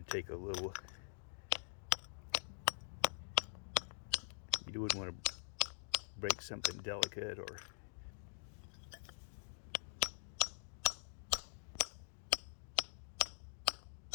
to take a little, you wouldn't want to break something delicate or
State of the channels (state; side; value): silent; right; digital silence